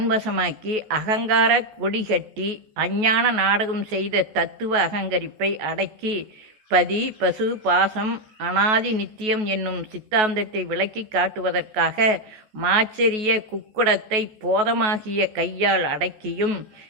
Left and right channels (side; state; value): left; late; 14 ms